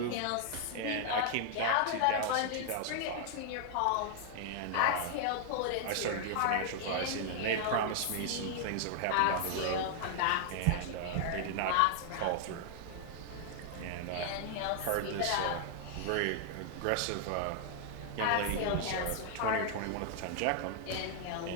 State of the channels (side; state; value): both; different; correlation 0.00